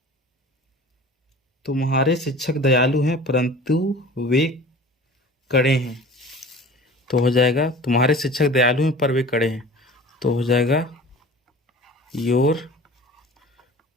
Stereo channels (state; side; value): normal; both; correlation 0.41